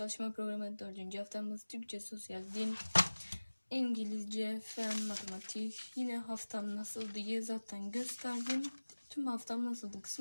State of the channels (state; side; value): inverted; both; correlation -1.00